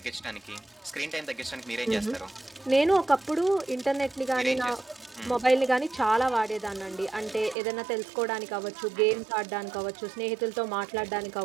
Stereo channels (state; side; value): drops out; left; at 7.6 s